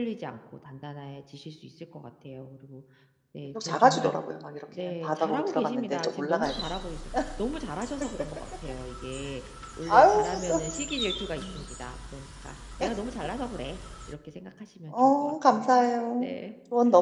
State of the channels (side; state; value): both; identical; correlation 1.00